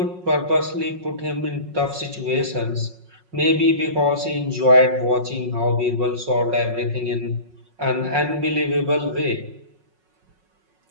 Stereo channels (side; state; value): left; late; 5.5 ms